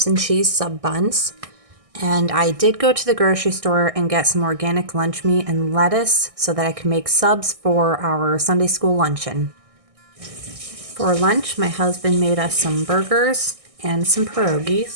and cheese sub buns. And I did go to the grocery store and get some organic lunch meat and lettuce so that I can make subs for our Sunday school luncheon. For lunch, my husband made us some burgers and some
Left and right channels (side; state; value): left; late; 1.6 ms